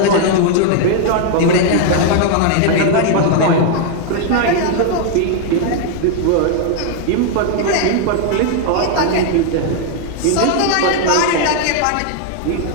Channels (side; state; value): both; different; correlation 0.00